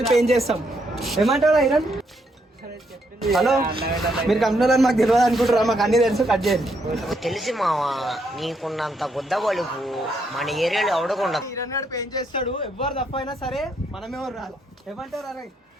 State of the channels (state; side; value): normal; both; correlation 0.75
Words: పెయింట్ చేస్తాం. ఏమంటారా ఇరన్? హలో, మీరు కంపెనీలో మాకు తెలియదు అనుకుంటారా? మాకు అన్ని తెలుసు. కట్ చేయండి. తెలిసి మావా, నీకున్నంత గుద్ద బలుపు మన ఏరియాలో అవడకుండా. ఇరన్నాడు పెయింట్ చేస్తాడు. ఎవరు తప్ప అయినా సరే మనమేమో రాదు. ఏమంటారు? అరే